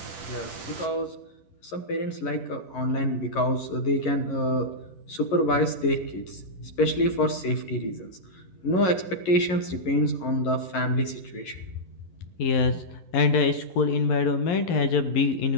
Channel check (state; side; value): late; right; 11 ms